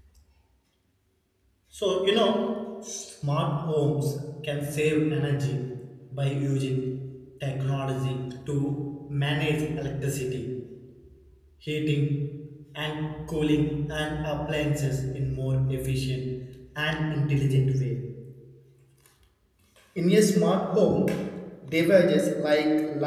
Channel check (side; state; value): both; identical; correlation 1.00